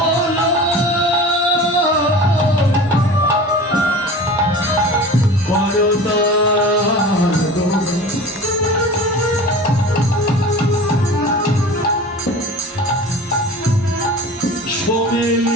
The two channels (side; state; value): both; normal; correlation 0.37